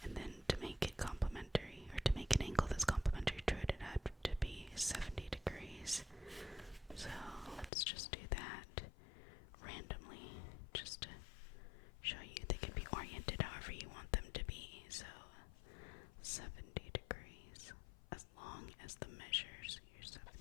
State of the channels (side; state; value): right; drops out; at 7.7 s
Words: and then to make it complementary, or to make an angle that's complementary to it, it had to be 70 degrees. So let's just do that randomly, just to show you they can be oriented however you want them to be. So 70 degrees, as long as the measures, here's